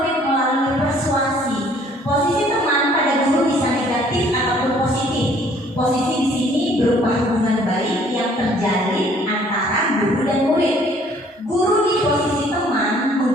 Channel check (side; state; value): both; normal; correlation 0.58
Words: melalui persuasi. Posisi teman pada guru bisa negatif ataupun positif. Posisi di sini berupa hubungan baik yang terjalin antara guru dan murid. Guru di posisi teman